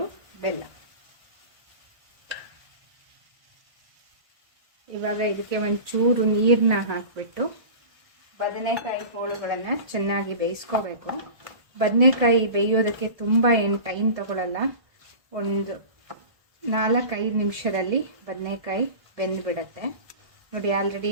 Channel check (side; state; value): left; late; 1.5 ms